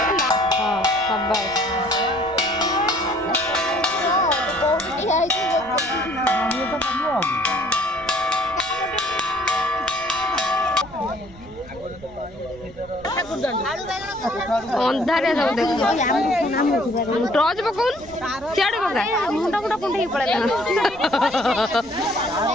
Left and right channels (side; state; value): right; noise; rumble, 20 dB below the sound